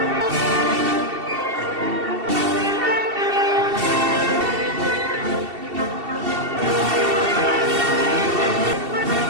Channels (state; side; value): late; left; 2.7 ms